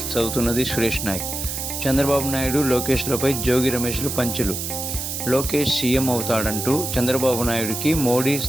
చదువుతున్నది సురేష్ నాయక్. చంద్రబాబు నాయుడు లోకేష్లపై జోగి రమేష్లు పంచులు. లోకేష్ సీఎం అవుతాడంటూ చంద్రబాబు నాయుడుకి మోడీ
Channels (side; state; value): right; noise; hiss, 4 dB below the sound